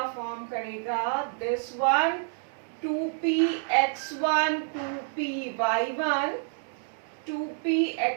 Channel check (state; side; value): silent; left; digital silence